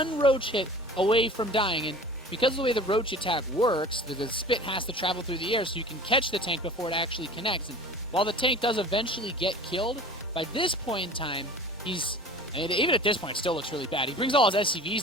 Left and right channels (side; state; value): both; normal; correlation 0.41